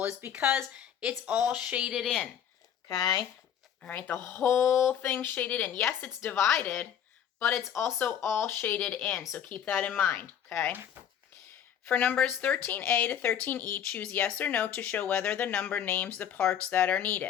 is because it's all shaded in. Okay. All right, the whole thing shaded in. Yes, it's divided, but it's also all shaded in. So keep that in mind. Okay. For numbers 13A to 13E, choose yes or no to show whether the number names the parts that are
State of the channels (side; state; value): right; quieter; 9.3 dB